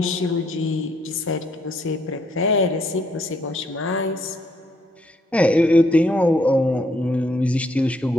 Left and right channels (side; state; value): both; normal; correlation 0.70